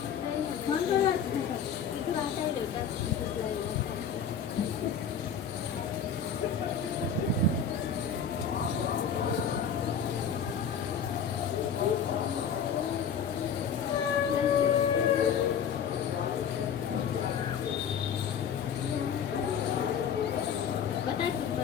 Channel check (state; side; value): quieter; right; 7.1 dB